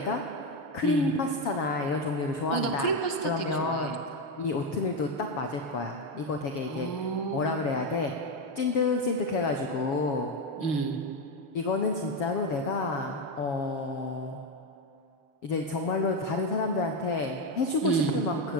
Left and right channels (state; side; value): late; right; 7.2 ms